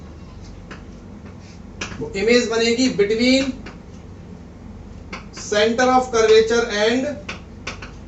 वो इमेज बनेगी between centre of curvature and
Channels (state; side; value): identical; both; correlation 1.00